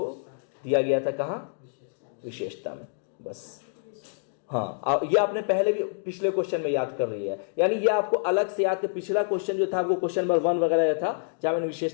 दिया गया था। कहां? विशेषता में। बस हाँ, ये आपने पहले भी पिछले क्वेश्चन में याद कर रही है, यानी ये आपको अलग से याद कर। पिछला क्वेश्चन जो था वो क्वेश्चन नंबर 1 वगैरह था जहां मैंने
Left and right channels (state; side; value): silent; right; digital silence